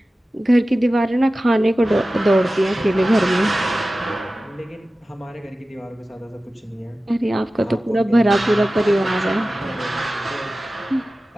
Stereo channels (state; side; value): normal; both; correlation 0.96